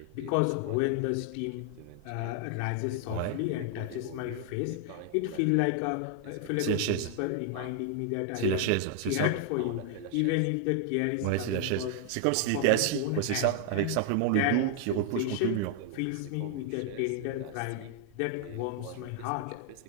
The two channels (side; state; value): both; different; correlation 0.00